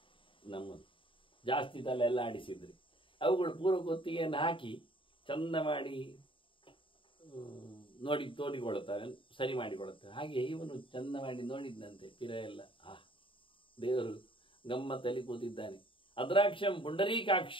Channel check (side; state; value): right; late; 0.25 ms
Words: ನಮ್ಮದು ಜಾಸ್ತಿ ತಲೆ ಎಲ್ಲ ಆಡಿಸಿದ್ರಿ ಅವುಗಳು ಪೂರ್ವ ಕೊತ್ತಿಗೆಯನ್ನು ಹಾಕಿ ಚಂದ ಮಾಡಿ ತೋಡಿಕೊಳ್ಳುತ್ತವೆ, ಸರಿ ಮಾಡಿಕೊಳ್ಳುತ್ತವೆ. ಹಾಗೆ ಇವನು ಚಂದ ಮಾಡಿ ನೋಡಿದ್ದಂತೆ ಪಿರ ಎಲ್ಲ. ದೇವರು ಗಮ್ಮತ್ತಲ್ಲಿ ಕೂತಿದ್ದಾನೆ. ಅದ್ರಾಕ್ಷಂ